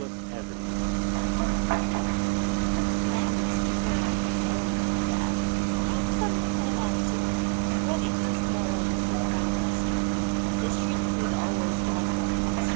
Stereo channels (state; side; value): quieter; left; 38.6 dB